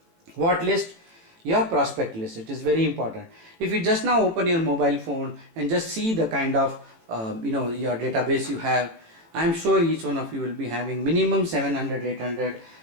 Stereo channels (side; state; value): left; late; 18 ms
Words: What list? Your prospect list. It is very important. If you just now open your mobile phone and just see the kind of your database you have, I am sure each one of you will be having minimum 700, 800